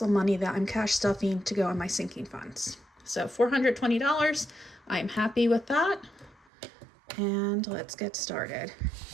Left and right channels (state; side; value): drops out; left; at 6.5 s